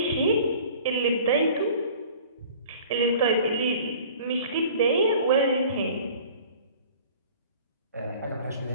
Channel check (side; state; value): both; inverted; correlation -0.47